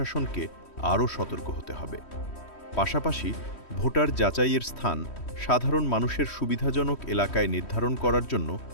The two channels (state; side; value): late; right; 3.1 ms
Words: আরও সতর্ক হতে হবে। পাশাপাশি ভোটার যাচাইয়ের স্থান সাধারণ মানুষের সুবিধাজনক এলাকায় নির্ধারণ করার জন্য